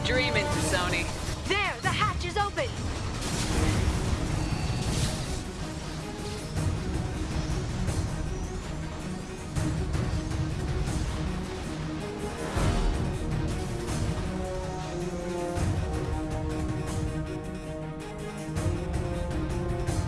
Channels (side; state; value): both; identical; correlation 1.00